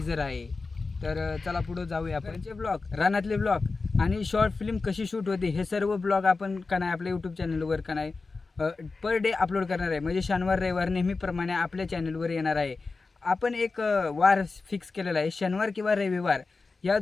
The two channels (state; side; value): quieter; right; 4.0 dB